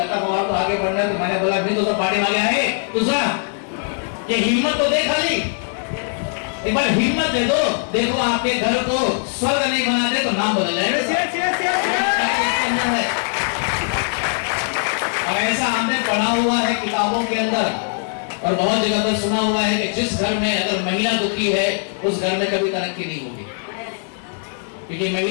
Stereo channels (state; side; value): silent; right; 58 dB below the other